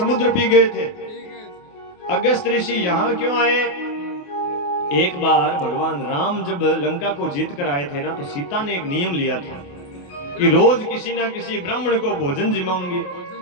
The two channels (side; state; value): right; late; 28 ms